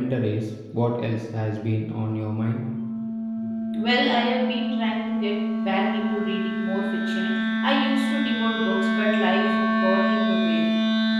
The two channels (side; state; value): both; identical; correlation 1.00